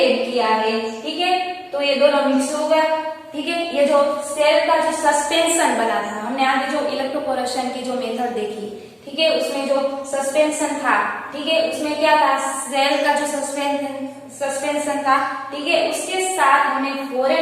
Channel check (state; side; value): identical; both; correlation 1.00